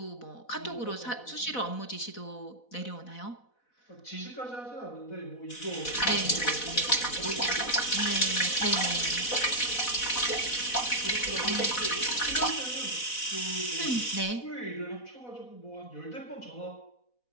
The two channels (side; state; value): right; late; 4.1 ms